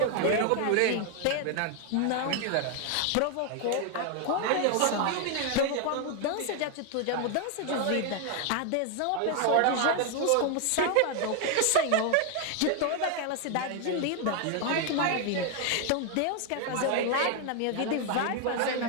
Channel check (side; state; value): both; different; correlation 0.00